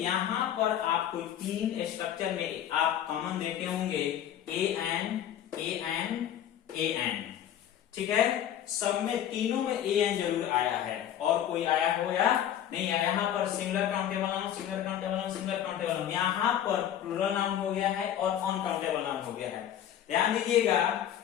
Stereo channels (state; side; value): quieter; right; 10.6 dB